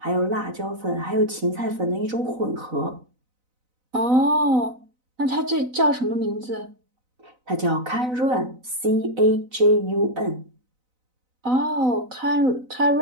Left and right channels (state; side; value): late; left; 4.0 ms